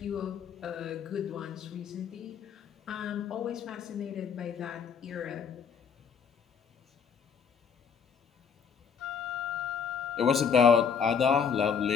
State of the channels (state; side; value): quieter; right; 6.7 dB